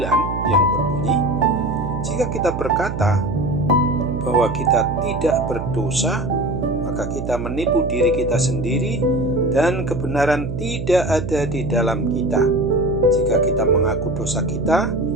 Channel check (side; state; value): right; noise; hum, 6 dB below the sound